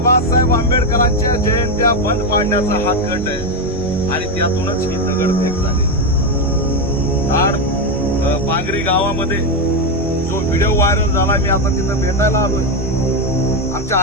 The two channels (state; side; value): normal; both; correlation 0.08